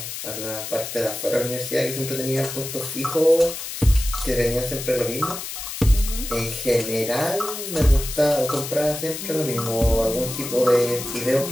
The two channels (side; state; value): left; noise; hiss, 7 dB below the sound